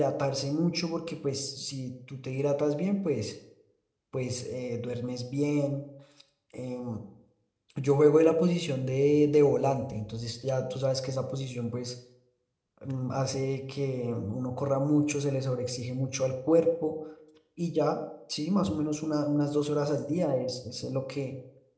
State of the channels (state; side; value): identical; both; correlation 1.00